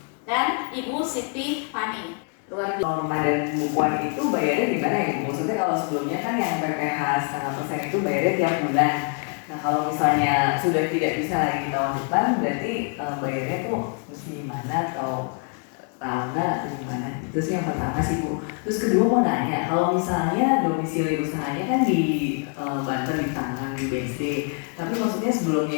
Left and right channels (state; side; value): quieter; right; 38.9 dB